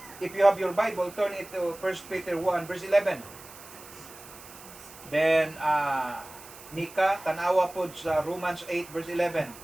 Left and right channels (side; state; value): right; noise; hiss, 18 dB below the sound